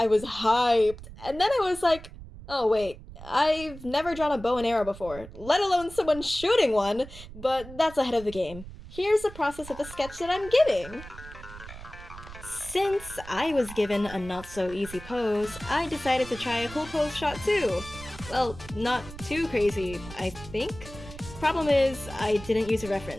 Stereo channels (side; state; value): right; noise; rumble, 15 dB below the sound